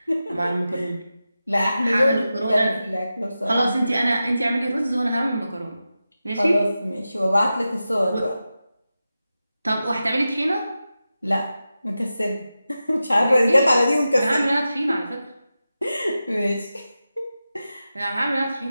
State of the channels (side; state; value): both; inverted; correlation -0.92